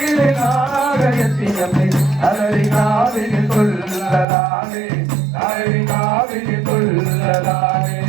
நாகயத்தியம்மே அலரிகாவினி துள்ளலானே அலரிகாவினி துள்ளலானே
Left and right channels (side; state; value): left; drops out; at 4.2 s